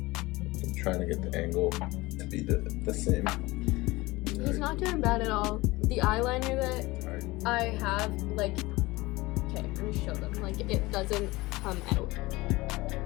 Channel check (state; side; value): quieter; right; 21.2 dB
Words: I'm trying to get the angle to be the same. He's not doing bad at all. The eyeliner that I have, like, okay, let me show them. Like, it doesn't come out.